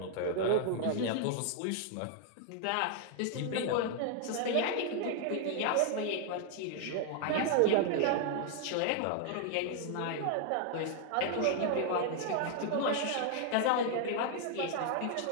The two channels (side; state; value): both; different; correlation 0.00